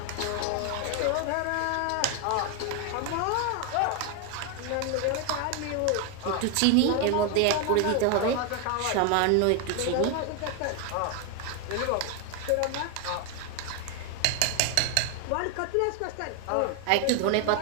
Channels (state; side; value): different; both; correlation 0.01